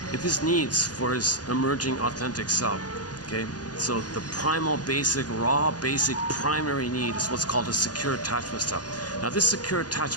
It is needs for his emerging authentic self, okay? So the primal, basic, raw, basic, primary need is what's called a secure attachment style. Now this secure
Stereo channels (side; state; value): right; late; 0.69 ms